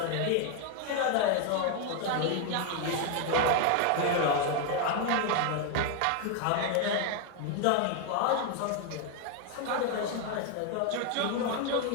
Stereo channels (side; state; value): both; different; correlation 0.01